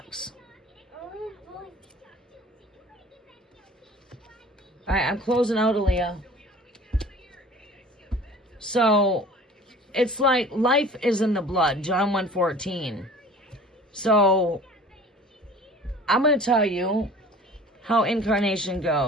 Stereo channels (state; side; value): normal; both; correlation 0.45